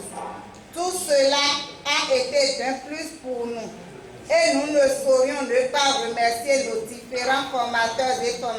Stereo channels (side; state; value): both; identical; correlation 1.00